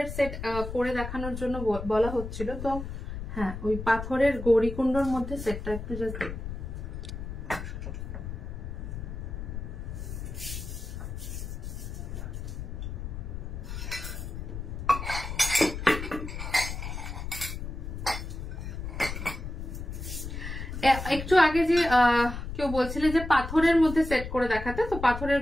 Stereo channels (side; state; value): left; noise; rumble, 7 dB below the sound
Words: সেট করে দেখানোর জন্য বলা হচ্ছিল, তো হ্যাঁ ওই পাথরের গৌরীকুণ্ডর মধ্যে সেটটা একটু জাস্ট একটু আগে যে কেউ বলছিলে যে পাথরের মধ্যে সেট করে দেখাতে, তো পাথরের